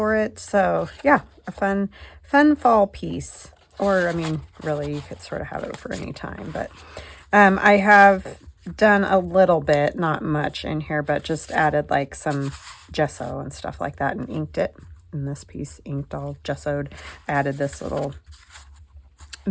it. So yeah, a fun fall piece. Or I mean, really, you could sort of have it for any time, but I have done a little bit, not much in here, but just added like some gesso and stuff like that and inked it. And this piece inked all gessoed. Added this little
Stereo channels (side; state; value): both; identical; correlation 1.00